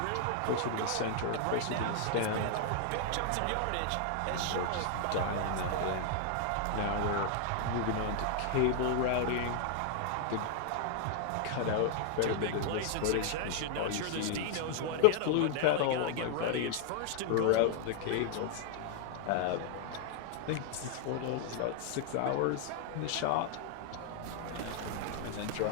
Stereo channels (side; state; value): both; different; correlation 0.00